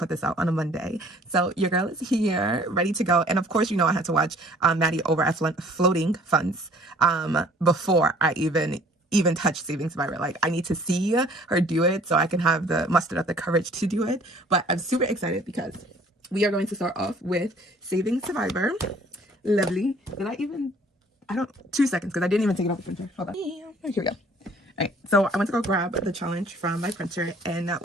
this out on a Monday. So your girl is here, ready to go, and of course, you know I had to watch Maddie over at Floating Funds before I even touch Saving Survivor. Like, I need to see her do it so I can have the muster up the courage to do it. But I'm super excited because we are going to start off with Saving Survivor. Lovely. I don't, 2 seconds because I didn't even take it off the printer. Hold on. Here we go. All right, so I went to go grab the challenge from my printer, and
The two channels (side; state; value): both; normal; correlation 0.55